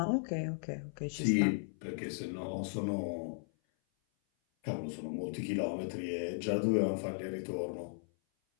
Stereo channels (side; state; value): right; silent; 54 dB below the other